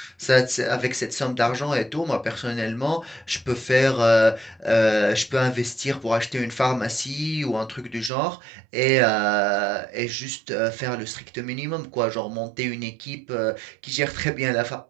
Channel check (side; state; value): left; drops out; at 8.1 s